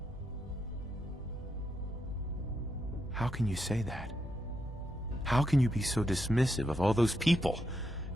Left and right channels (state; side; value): normal; both; correlation 0.82